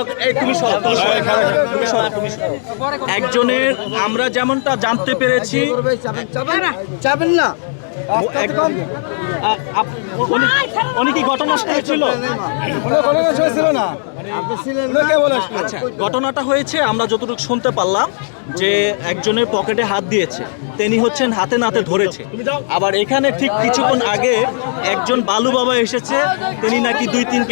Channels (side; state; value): right; silent; digital silence